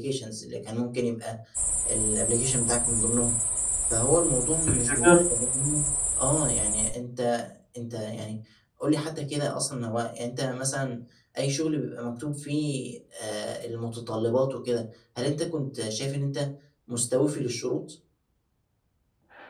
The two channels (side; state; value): both; identical; correlation 1.00